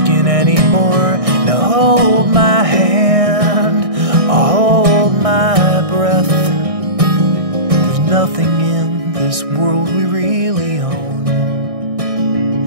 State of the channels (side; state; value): left; late; 1.6 ms